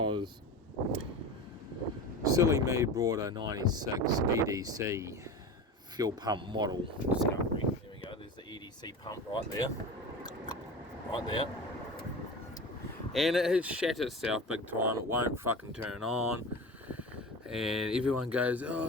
silly me brought a 96 EDC fuel pump model discovery. There we go, there's the EDC pump right there, and it has shat itself big time. It won't fucking turn on, and everyone goes,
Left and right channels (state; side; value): normal; both; correlation 0.30